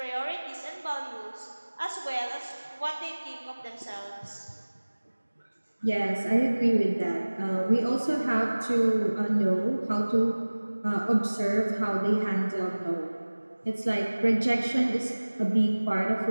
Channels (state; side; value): inverted; both; correlation -1.00